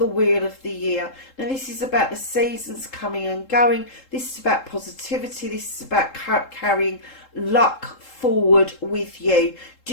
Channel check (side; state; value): right; late; 3.7 ms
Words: Wheel of the Year. Now, this is about the seasons coming and going. This is about positivity. This is about carrying luck forward with you.